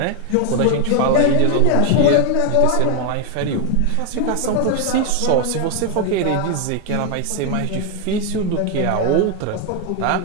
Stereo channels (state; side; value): different; both; correlation 0.01